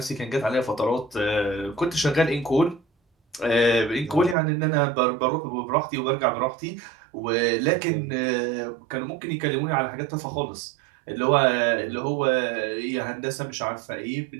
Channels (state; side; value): drops out; left; at 4.4 s